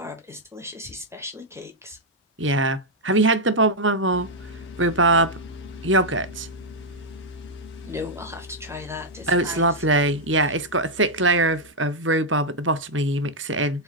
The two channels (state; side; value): normal; both; correlation -0.03